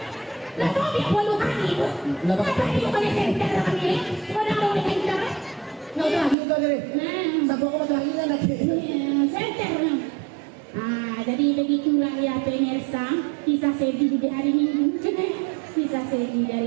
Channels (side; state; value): left; drops out; at 6.4 s